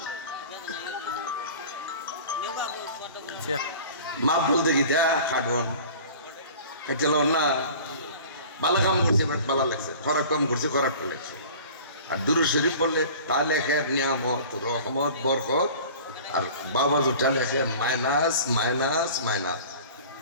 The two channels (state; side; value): inverted; both; correlation -0.43